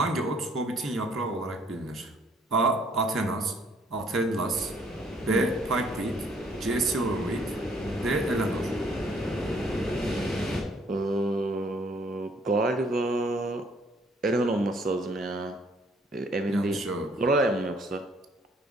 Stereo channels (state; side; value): normal; both; correlation 0.63